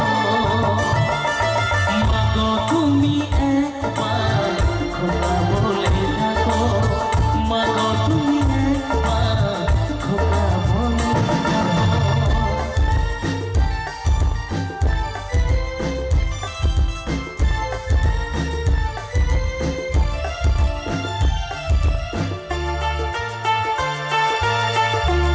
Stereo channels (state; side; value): identical; both; correlation 1.00